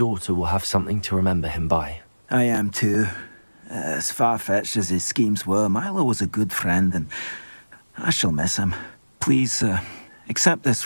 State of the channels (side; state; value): both; inverted; correlation -1.00